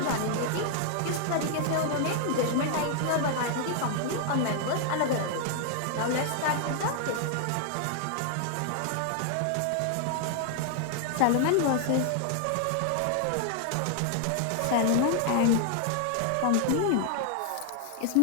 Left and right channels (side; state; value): both; different; correlation 0.00